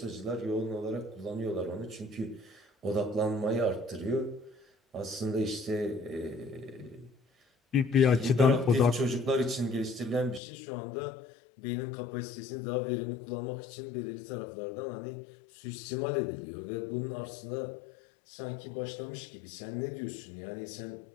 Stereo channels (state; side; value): drops out; right; at 10.4 s